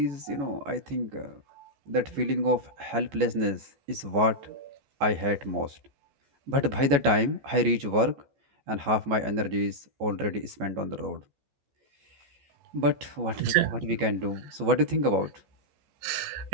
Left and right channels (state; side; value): late; left; 14 ms